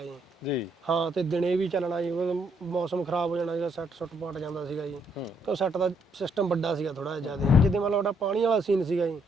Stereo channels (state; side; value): normal; both; correlation 0.72